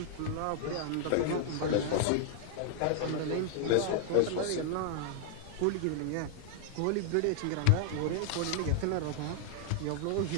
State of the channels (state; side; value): different; both; correlation 0.00